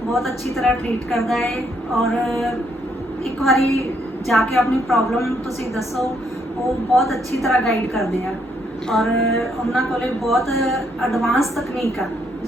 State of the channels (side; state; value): both; normal; correlation 0.73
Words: ਬਹੁਤ ਅੱਛੀ ਤਰ੍ਹਾਂ ਟਰੀਟ ਕਰਦਾ ਹੈ, ਔਰ ਇੱਕ ਵਾਰੀ ਜਾ ਕੇ ਆਪਣੀ ਪ੍ਰੋਬਲਮ ਤੁਸੀਂ ਦੱਸੋ, ਉਹ ਬਹੁਤ ਅੱਛੀ ਤਰ੍ਹਾਂ ਗਾਈਡ ਕਰਦੇ ਆ, ਔਰ ਉਹਨਾਂ ਕੋਲੇ ਬਹੁਤ ਐਡਵਾਂਸ ਤਕਨੀਕ ਆ,